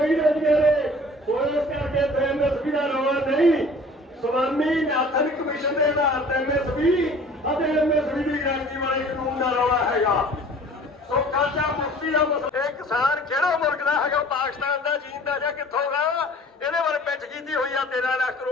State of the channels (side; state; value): both; normal; correlation 0.48